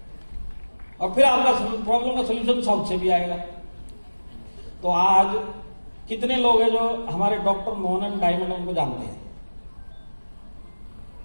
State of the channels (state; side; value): inverted; both; correlation -1.00